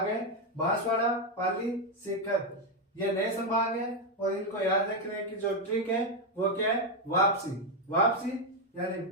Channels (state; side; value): normal; both; correlation 0.04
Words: है, बांसवाड़ा, पाली, सीकर, ये नए संभाग है और इनको याद रखने की जो ट्रिक है वो क्या है? वापसी। वापसी यानी